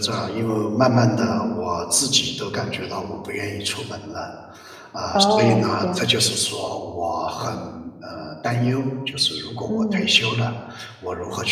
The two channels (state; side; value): identical; both; correlation 1.00